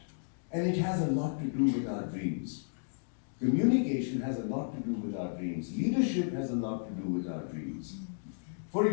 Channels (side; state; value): right; silent; digital silence